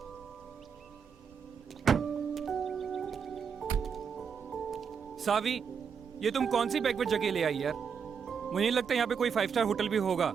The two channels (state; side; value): quieter; left; 6.7 dB